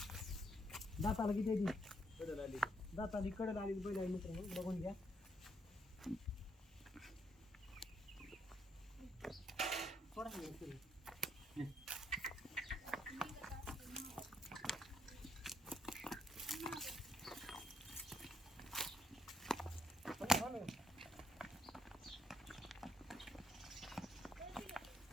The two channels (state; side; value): normal; both; correlation 0.73